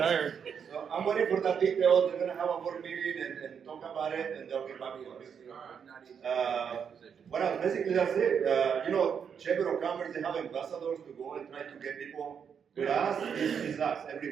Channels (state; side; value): quieter; left; 7.2 dB